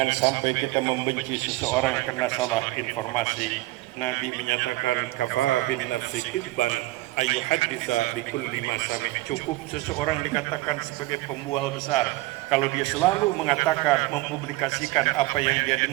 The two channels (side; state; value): left; quieter; 19.3 dB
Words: sampai kita membenci seseorang karena salah informasi. Nabi menyatakan kafa bin nafsi kidban ayyuhadditsa bikulli ma sami. Cukup seseorang dikatakan sebagai pembual besar kalau dia selalu mengatakan, mempublikasikan apa yang dia